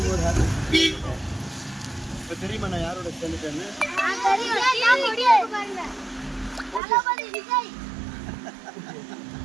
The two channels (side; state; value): left; drops out; at 6.8 s